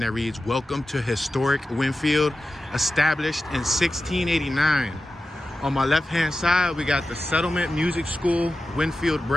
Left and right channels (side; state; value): both; normal; correlation 0.93